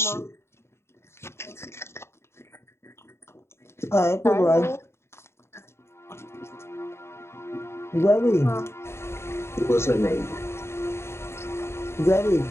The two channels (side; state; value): right; late; 0.13 ms